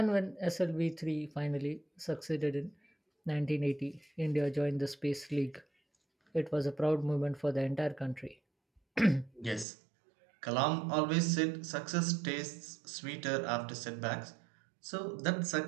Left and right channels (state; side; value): drops out; left; at 9.7 s